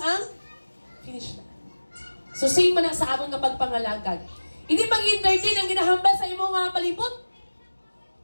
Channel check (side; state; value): both; inverted; correlation -1.00